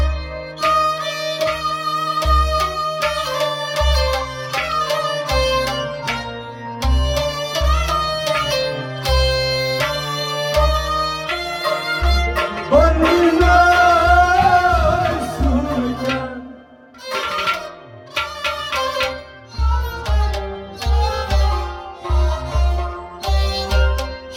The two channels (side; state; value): both; identical; correlation 1.00